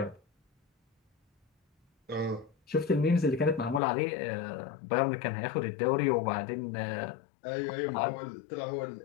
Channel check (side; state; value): right; drops out; at 3.8 s